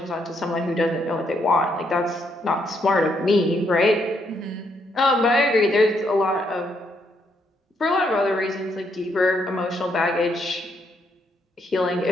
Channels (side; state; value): both; normal; correlation 0.75